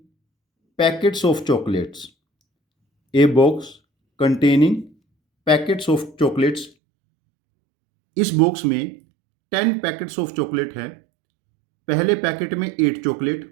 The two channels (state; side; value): drops out; left; at 6.7 s